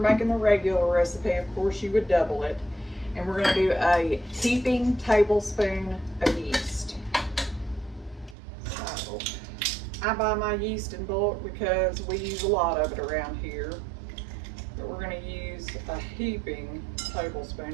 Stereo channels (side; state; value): left; drops out; at 8.3 s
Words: making the regular recipe, of course you would double it. And we're going to do a heaping tablespoon of yeast. So I buy my yeast in bulk because we use a lot of it around here. But we're going to use a heaping tablespoon,